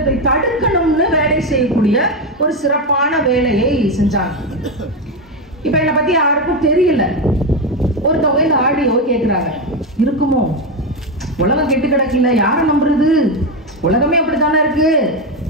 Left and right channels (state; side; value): normal; both; correlation 0.11